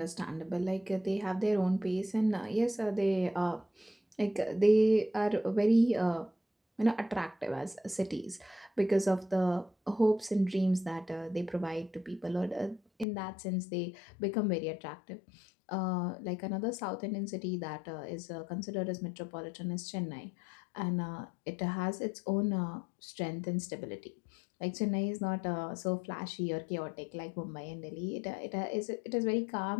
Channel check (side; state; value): right; drops out; at 13.1 s